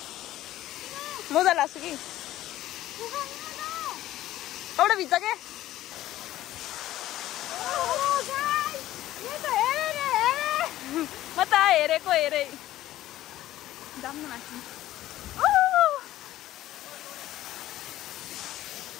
लाग्छु कि. कपडा भिज्छ के. म त हेरेको हेरे. जाम न माथि.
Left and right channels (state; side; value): quieter; right; 14.5 dB